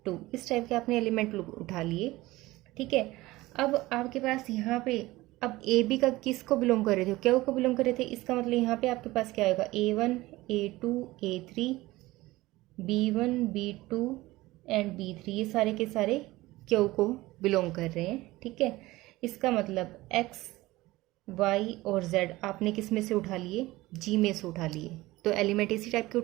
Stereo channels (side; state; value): left; quieter; 18.9 dB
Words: two. इस टाइप के आपने एलिमेंट उठा लिए, ठीक है। अब आपके पास यहाँ पे अब ए बी का किसको बिलोंग कर रहे थे? क्या को बिलोंग कर रहे थे? इसका मतलब यहाँ पे आपके पास क्या होगा? a1 a2 a3 b1 b2 and b3 ये सारे के सारे क्यू को बिलोंग कर रहे हैं, ठीक है। इसका मतलब x y और z आपने किस में से उठा लिए? g में से उठा लिए। तो एलिमेंट इसी टाइप के